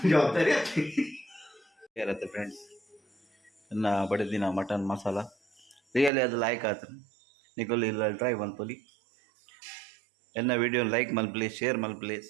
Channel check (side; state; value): left; drops out; at 6.1 s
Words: జವಾಬ್ದಾರಿ ಇರುತ್ತೆ ಫ್ರೆಂಡ್ಸ್ ಇನ್ನು ಬಡಿದಿನ ಮಟನ್ ಮಸಾಲ ರಿಯಲಿ ಅದು ಲೈಕ್ ಆಯ್ತು ನೀಕು ಇಲ್ಲ ಟ್ರೈ ಮಲ್ಪೋಲಿ ಎನ್ನ ವಿಡಿಯೋ ಲೈಕ್ ಮಲ್ಪಲಿ ಶೇರ್ ಮಲ್ಪಲಿ